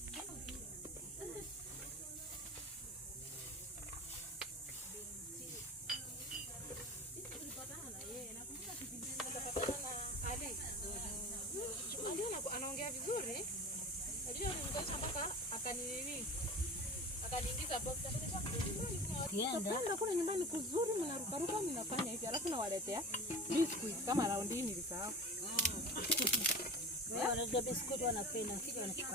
Anaongea vizuri. Najua nimekosha mpaka akaniingiza box. Ndio kuna nyumbani kuzuri mnarukaruka mnafanya hivi alafu nawaletea biscuit kama round hii nilisahau. Wewe unajua biscuit wanapenda kile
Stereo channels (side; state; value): both; normal; correlation 0.34